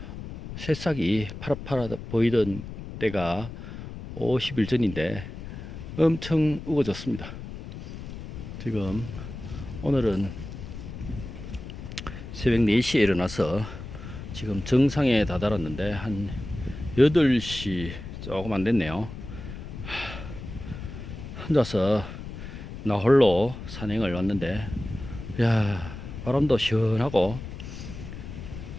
새싹이 파랗파랗 보이던 때가 50일 전인데 엄청 우거졌습니다. 지금 오늘은 새벽 4시에 일어나서 지금 정상에 다다랐는데 한 8시 조금 안 됐네요. 혼자서 나 홀로 산행을 왔는데, 야, 바람도 시원하고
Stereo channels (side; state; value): left; noise; rumble, 10 dB below the sound